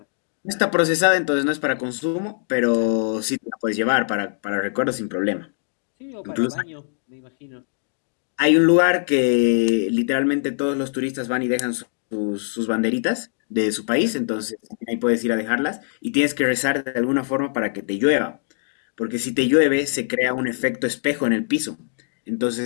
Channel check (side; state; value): right; silent; digital silence